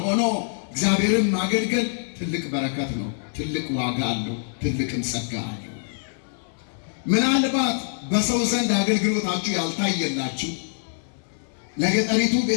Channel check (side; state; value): right; silent; digital silence